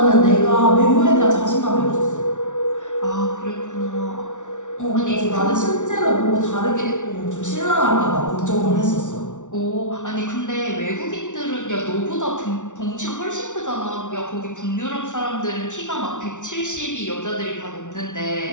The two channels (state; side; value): late; right; 0.86 ms